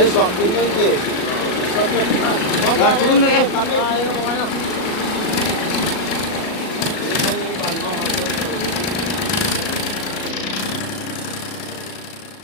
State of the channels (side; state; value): right; late; 37 ms